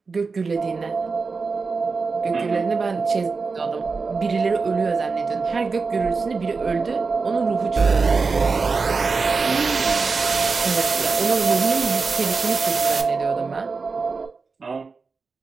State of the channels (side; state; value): left; quieter; 4.5 dB